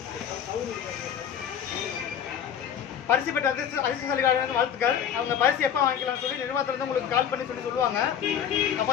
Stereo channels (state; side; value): quieter; right; 8.8 dB